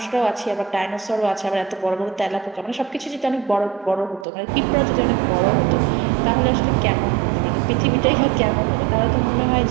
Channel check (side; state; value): left; drops out; at 4.2 s